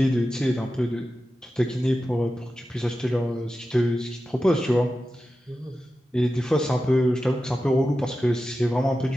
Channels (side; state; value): both; normal; correlation 0.92